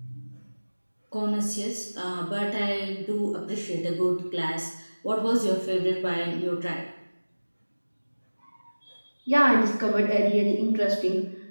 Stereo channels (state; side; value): inverted; both; correlation -1.00